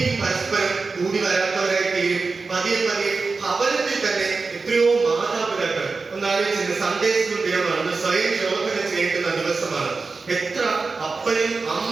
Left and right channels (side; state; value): left; quieter; 4.2 dB